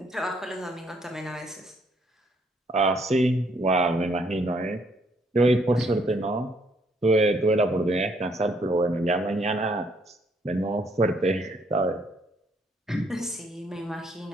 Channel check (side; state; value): both; normal; correlation 0.69